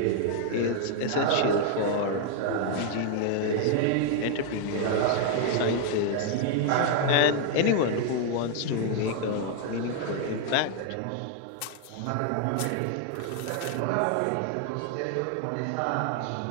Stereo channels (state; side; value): different; both; correlation 0.00